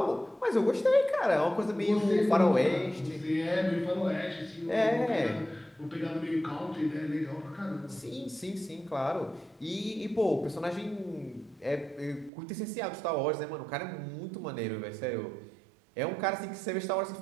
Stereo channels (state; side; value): drops out; left; at 12.3 s